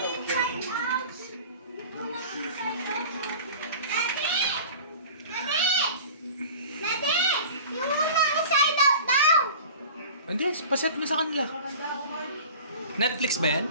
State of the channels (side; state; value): both; inverted; correlation -0.40